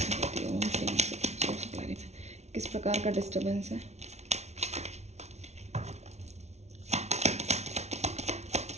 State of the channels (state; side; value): late; left; 0.32 ms